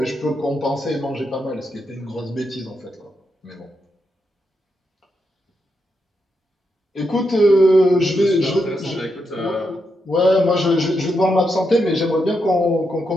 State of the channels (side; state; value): both; normal; correlation 0.83